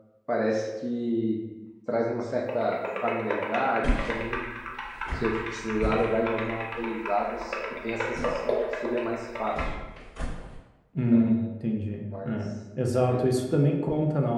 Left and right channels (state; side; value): identical; both; correlation 1.00